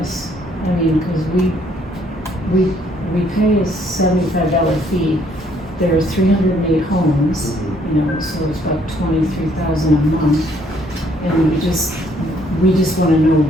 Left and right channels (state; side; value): normal; both; correlation 0.66